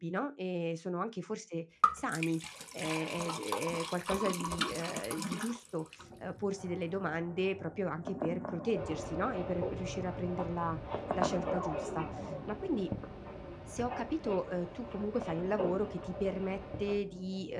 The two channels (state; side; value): identical; both; correlation 1.00